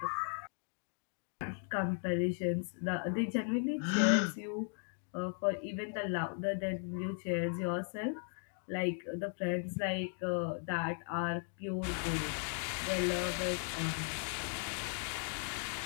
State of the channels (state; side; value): silent; right; 53 dB below the other